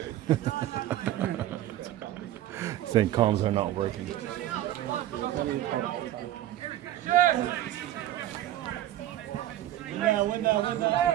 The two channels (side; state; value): left; quieter; 13.6 dB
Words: Saying comms are not working. Win now.